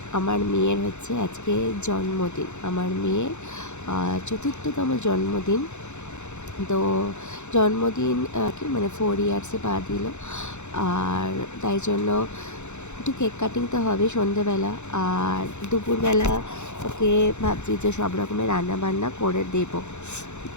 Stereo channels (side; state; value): right; late; 0.83 ms